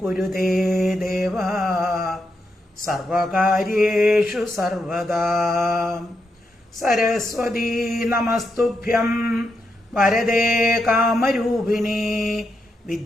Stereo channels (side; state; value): both; normal; correlation 0.83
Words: കുരുതേ ദേവ സർവകാര്യേഷു സർവദാ. സരസ്വതീ നമസ്തുഭ്യം വരദേ കാമരൂപിണി